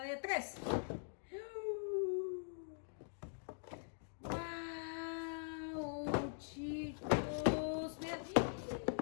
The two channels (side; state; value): right; silent; digital silence